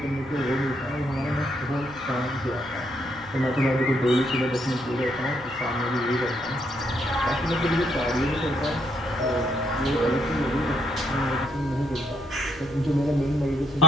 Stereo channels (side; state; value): right; noise; hum, 21 dB below the sound